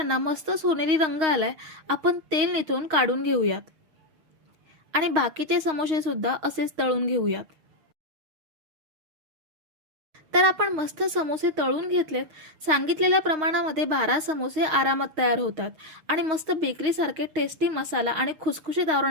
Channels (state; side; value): late; left; 6.3 ms